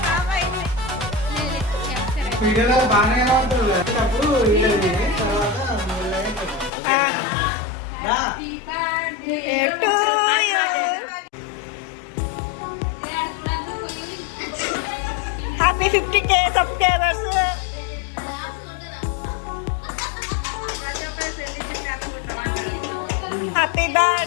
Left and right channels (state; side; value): drops out; right; at 6.7 s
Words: వీడియోలో బాగానే ఉంటుంది అప్పుడు వీడియో తర్వాత happy 50K subscribers. Happy